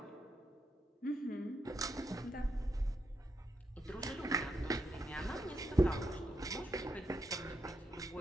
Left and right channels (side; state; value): both; normal; correlation 0.82